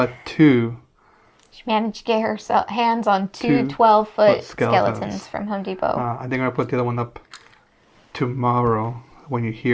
two She managed to get her hands on two 12-foot 12-foot skeletons from Home Depot. I think I'm gonna put the other one up tomorrow when you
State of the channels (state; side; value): identical; both; correlation 1.00